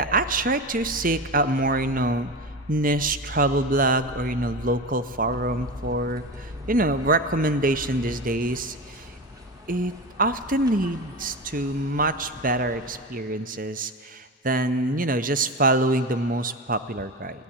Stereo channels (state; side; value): normal; both; correlation 0.24